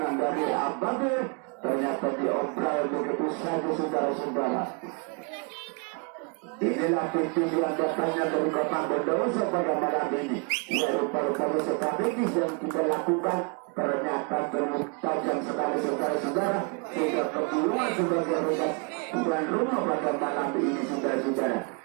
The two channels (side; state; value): left; quieter; 34.6 dB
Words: dari Ababil. Ternyata diobral begitu saja saudara-saudara. Inilah tujuan datangnya dari kota Bondowoso pada malam ini. Ya, rupa-rupa strategis yang kita lakukan ternyata tajam sekali saudara-saudara sehingga keburuan sebagai Regas tuan rumah pada malam ini saudara-saudara.